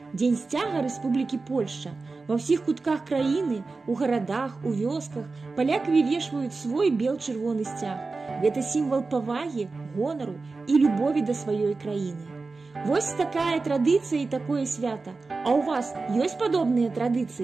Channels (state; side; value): quieter; left; 3.9 dB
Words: дзень сцяга Рэспублікі Польшча. Ва ўсіх кутках краіны, у гарадах, у вёсках палякі вывешваюць свой бел-чырвоны сцяг. Гэта сімвал павагі, гонару і любові да сваёй краіны. Вось такая традыцыя і такое свята. А ў вас ёсць падобныя